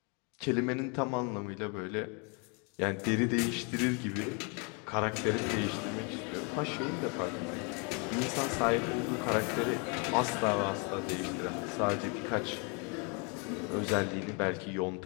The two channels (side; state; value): right; quieter; 34.6 dB